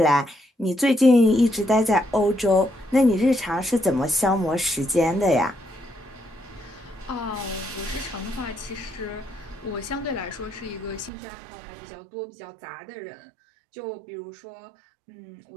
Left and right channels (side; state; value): left; drops out; at 11.1 s